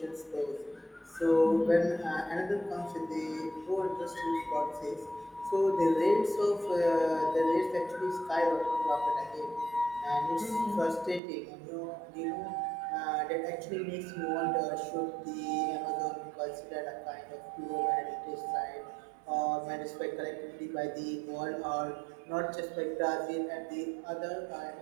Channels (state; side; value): drops out; left; at 11.2 s